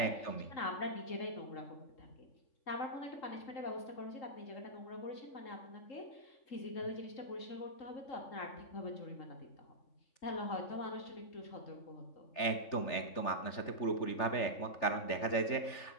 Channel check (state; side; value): late; right; 3.4 ms